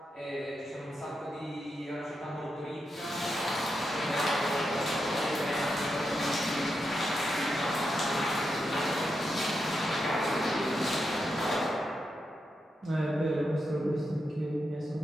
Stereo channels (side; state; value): both; normal; correlation 0.86